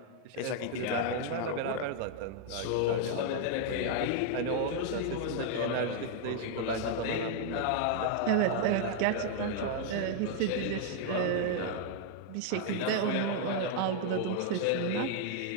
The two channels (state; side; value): different; both; correlation 0.00